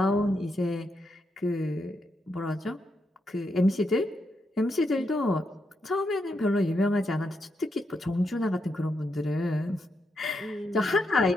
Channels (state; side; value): normal; both; correlation 0.82